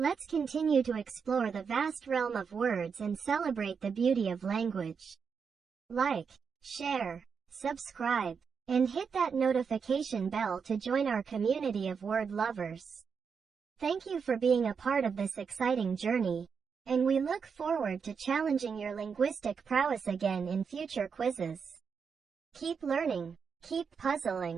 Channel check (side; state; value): left; quieter; 6.1 dB